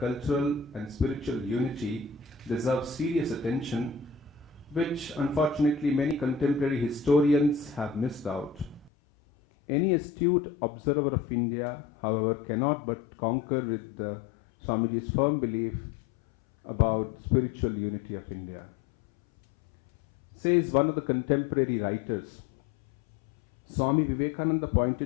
and spiritual unity deserve serious attention, which unfortunately many contemporary historians have missed out. Any astute observer of India, however, cannot but concur with Swamiji's firm belief about spiritual unity of India. Says one of the contemporary writers, Swami Vivekananda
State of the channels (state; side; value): drops out; right; at 8.9 s